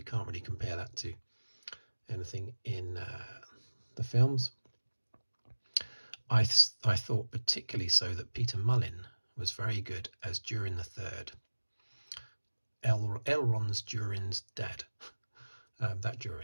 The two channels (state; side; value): inverted; both; correlation -1.00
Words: can't really compare that to anything in the films. I thought particularly so that Peter Mullin was very good as Durin the Third. Elrond's Durin's dad. That